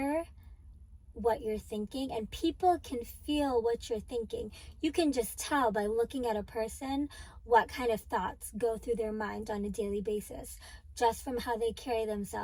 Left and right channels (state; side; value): identical; both; correlation 1.00